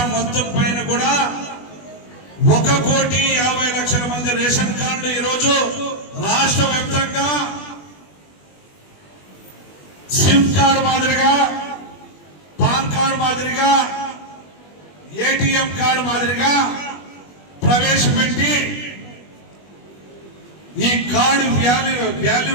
మొత్తం పైన కూడా 1,50,00,000 మంది రేషన్ కార్డులు ఈరోజు రాష్ట్ర వ్యాప్తంగా సిమ్ కార్డు మాదిరిగా, పాన్ కార్డు మాదిరిగా, ఏటీఎం కార్డు మాదిరిగా ప్రవేశపెట్టి ఈ కార్డు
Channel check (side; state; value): right; late; 20 ms